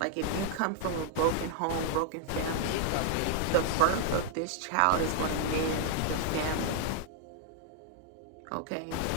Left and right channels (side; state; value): both; different; correlation -0.01